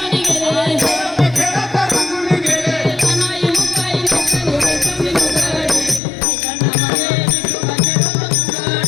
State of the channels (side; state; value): right; drops out; at 6.0 s